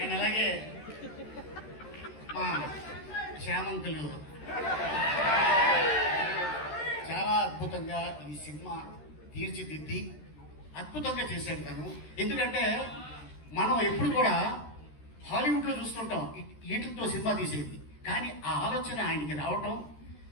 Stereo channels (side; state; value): right; late; 13 ms